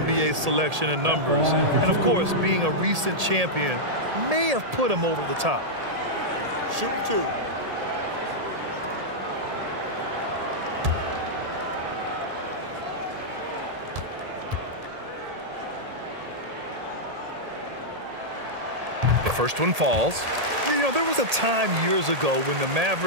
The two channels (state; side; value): late; left; 1.8 ms